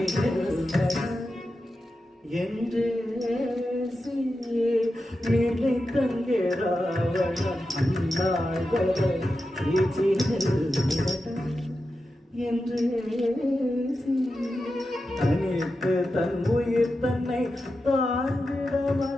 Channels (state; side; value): normal; both; correlation 0.90